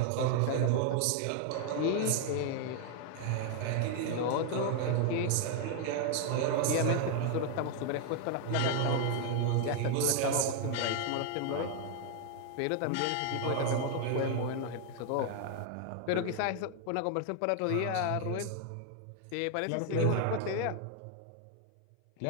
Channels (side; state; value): both; different; correlation 0.00